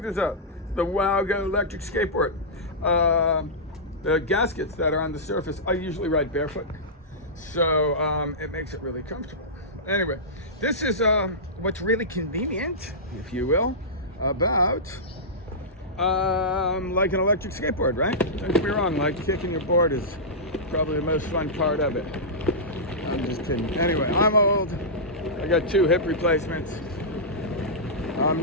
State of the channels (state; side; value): normal; both; correlation -0.14